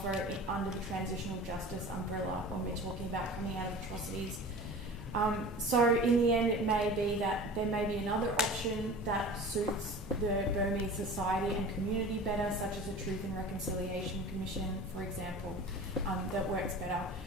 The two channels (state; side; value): normal; both; correlation 0.38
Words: under the transitional justice umbrella when we're talking about coming out of atrocities. So in the end, it may be that there may be another option that suits the Burmese society and community better, such as a Truth and Reconciliation Commission, for example, that works better.